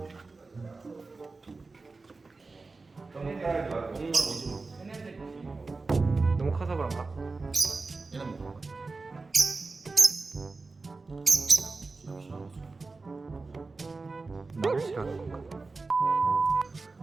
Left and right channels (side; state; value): left; quieter; 3.8 dB